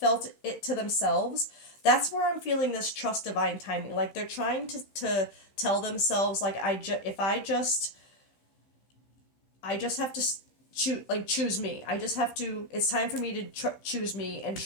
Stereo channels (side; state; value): right; late; 15 ms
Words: it to themselves, that's where I'm feeling this trust divine timing. Like they're trying to tell themselves, like, if I just have to choose me. I just have to, it's time for me to choose me and